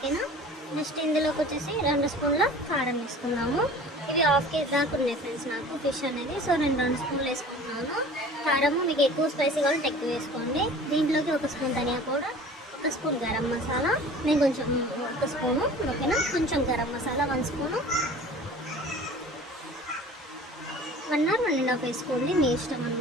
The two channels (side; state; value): both; normal; correlation 0.44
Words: నెక్స్ట్ ఇందులోకి వచ్చేసి 2 స్పూన్ల కారం వేసుకున్నాము. ఇవి హాఫ్ కేజీ దాకా ఉన్నాయి ఫ్రెండ్స్ నాకు ఫిష్ అనేది. సో నేను 2 స్పూన్లు వేసుకుంటున్నాను. కారము మీకు ఎక్కువ స్పైసీ కావాలంటే ఎక్కువ వేసుకోండి. దీంట్లోకి 1 స్పూన్ ధనియా పౌడర్, 1 స్పూన్ గరం మసాలా, నేను కొంచెం 1 స్పూను, ఓకేనా. కొంచెం గరం మసాలా 1 స్పూను, 1 or 1.5 వేసుకోండి, మీ ఇష్టం